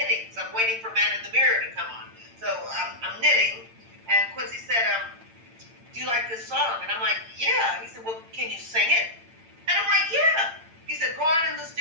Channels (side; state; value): left; late; 8.9 ms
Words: so I'm waiting for Man in the Mirror to come on. So I'm knitting, and Quincy said, "Do you like this song?" And I'm like, "Yeah." He said, "Well, can you sing it?" And I'm like, "Yeah." He said, "Go on in the